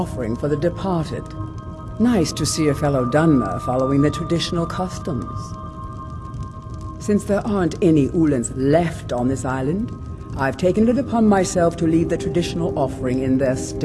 for the departed. Nice to see a fellow Dunmer following the traditional customs. Since there aren't any Ulans left on this island, I've taken it upon myself to leave the traditional offering in their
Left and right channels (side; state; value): both; identical; correlation 1.00